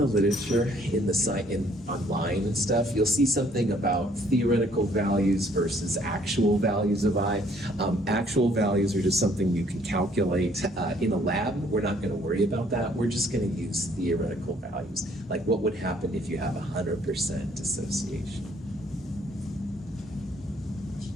literature, in the site, online and stuff, you'll see something about theoretical values versus actual values of I. Actual values are just something you can calculate in a lab. We're not going to worry about that. We're just going to use theoretical values, like what would happen if you have 100% dissociation.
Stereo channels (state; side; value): normal; both; correlation 0.62